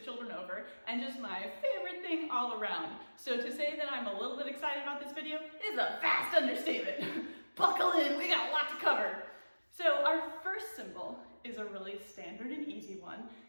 children over, and just my favorite thing all around. So to say that I'm a little bit excited about this video is a vast understatement. Buckle in, we got a lot to cover. So our first symbol is a really standard and easy one.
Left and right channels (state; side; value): inverted; both; correlation -1.00